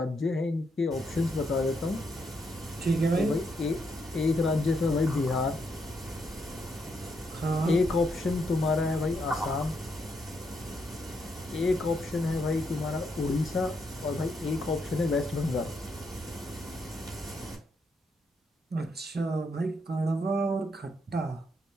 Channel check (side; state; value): both; normal; correlation 0.78